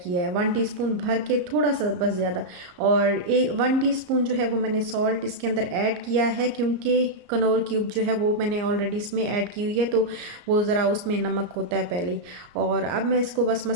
है, 1 टीस्पून भर के थोड़ा सा बस ज़्यादा। और 1 टीस्पून जो है वो मैंने सॉल्ट इसके अंदर ऐड किया है, क्योंकि कनौर क्यूब जो है वो मैंने ऑलरेडी इसमें ऐड की हुई है, तो वो ज़रा उसमें नमक होता है पहले ही। और अब मैं इसको बस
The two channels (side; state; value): left; late; 34 ms